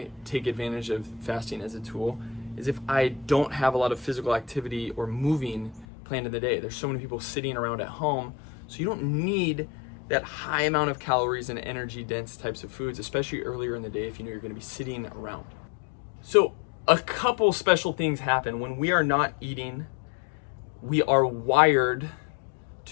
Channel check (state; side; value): drops out; right; at 5.9 s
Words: take advantage of fasting as a tool, is if I don't have a lot of physical activity or moving planned in the day. There's so many people sitting around at home, so you don't need that high amount of calories and energy dense types of foods, especially earlier in the day if you know you're going to be sitting around. So a couple special things happen when we are not eating. We are wired